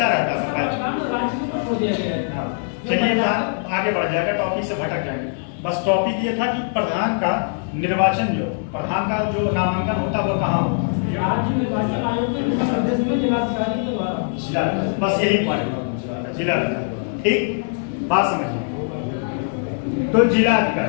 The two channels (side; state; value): right; silent; digital silence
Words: रहता था। राज्य में छोड़ दिया गया है। चलिए आगे बढ़ जाएगा, टॉपिक से भटक जाएंगे। बस टॉपिक ये था कि प्रधान का निर्वाचन, जो प्रधान का जो नामांकन होता है वो कहाँ होता है? राज्य निर्वाचन आयोग के प्रदेश में जिलाधिकारी के द्वारा। बस यही पॉइंट, जिलाधिकारी, ठीक, बात समझिए। तो